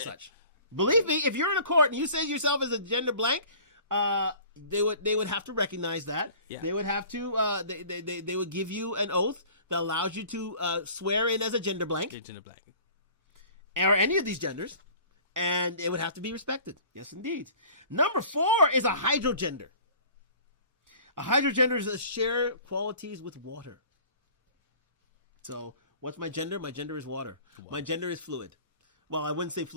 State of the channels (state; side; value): inverted; both; correlation -0.47